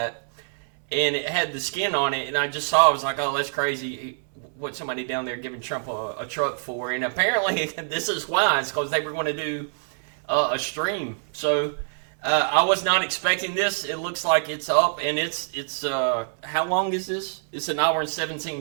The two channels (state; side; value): silent; left; 62 dB below the other